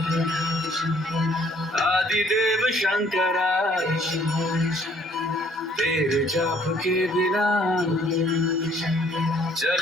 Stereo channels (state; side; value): normal; both; correlation 0.61